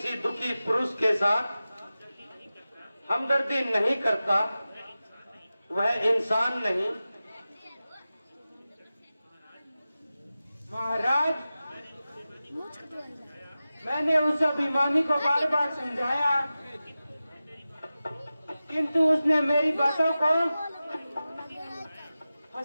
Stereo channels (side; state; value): both; inverted; correlation -0.95